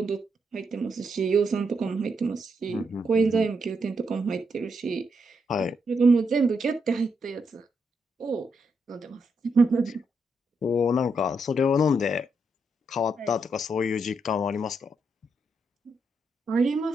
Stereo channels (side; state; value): both; normal; correlation 0.80